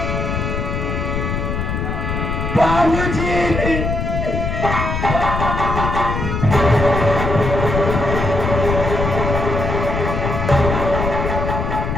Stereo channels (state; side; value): noise; left; rumble, 2 dB below the sound